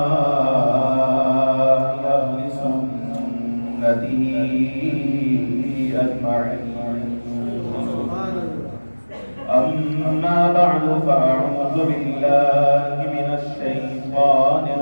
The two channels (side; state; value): both; inverted; correlation -1.00